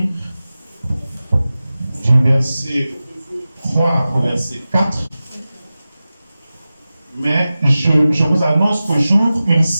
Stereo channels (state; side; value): inverted; both; correlation -0.95